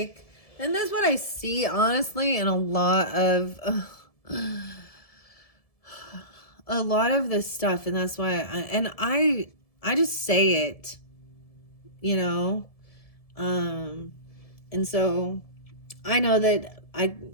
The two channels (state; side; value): late; right; 1.7 ms